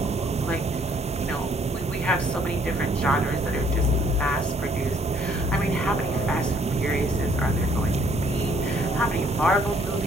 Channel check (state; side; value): normal; both; correlation 0.64